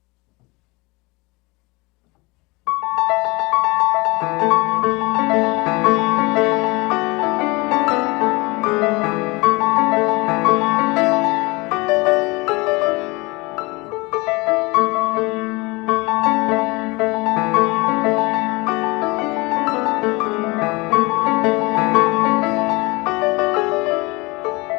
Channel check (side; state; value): right; quieter; 24.9 dB